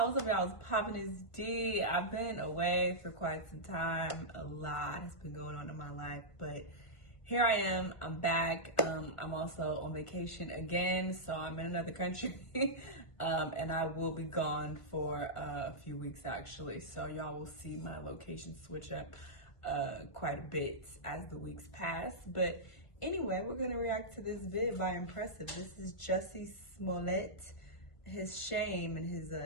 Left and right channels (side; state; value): right; late; 1.4 ms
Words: up, y'all? It's popping is D. I've been away for quite some time. A lot has been going on in my life, but here I am. I'm back. I'm also on vacation again, so I'm in another country, and I will be gone for a few weeks actually. So y'all will see my location switch up quite a bit as the weeks pass. But anyway, we're gonna react to this vid by Impressive. This is Jussie Smollett. His shame and his